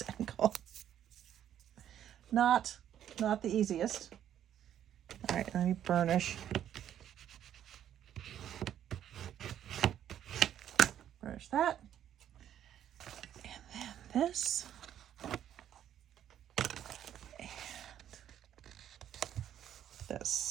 angle. Not the easiest. All right, let me burnish. Burnish that. And then this. And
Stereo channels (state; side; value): quieter; left; 10.5 dB